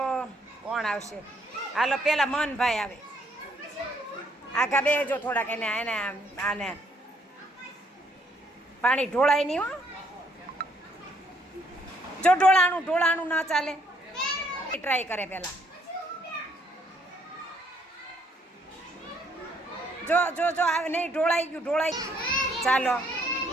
કોણ આવશે? હાલો પેલા મનભાઈ આવે. આખા બેજો થોડાક એને એને આને પાણી ઢોળાય નહીં હો. જો ઢોળાણું ના ચાલે. ટ્રાય કરે પેલા. જો જો જો નહીં ઢોળાઈ ગયું. ચાલો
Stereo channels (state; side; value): normal; both; correlation 0.68